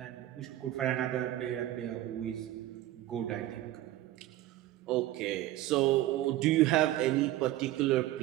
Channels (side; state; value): left; quieter; 14.9 dB